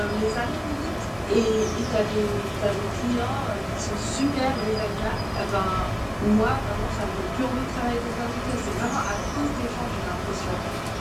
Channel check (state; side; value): identical; both; correlation 1.00